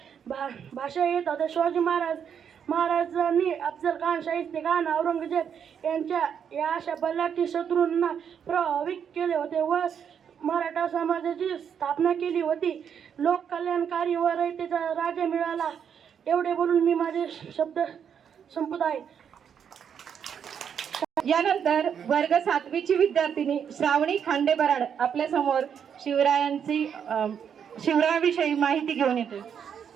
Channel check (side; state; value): left; quieter; 7.9 dB